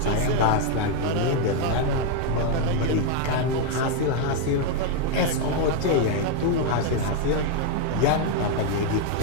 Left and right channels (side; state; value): both; different; correlation 0.01